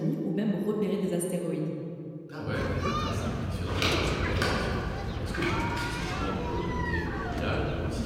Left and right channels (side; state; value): both; identical; correlation 1.00